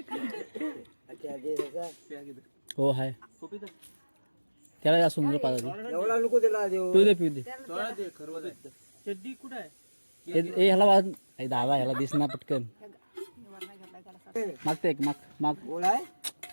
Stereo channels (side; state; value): both; inverted; correlation -1.00